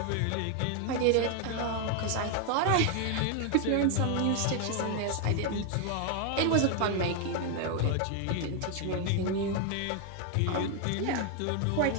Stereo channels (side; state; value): both; different; correlation 0.01